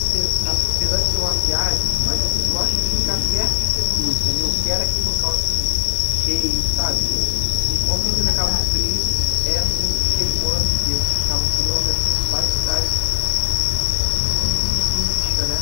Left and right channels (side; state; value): right; silent; digital silence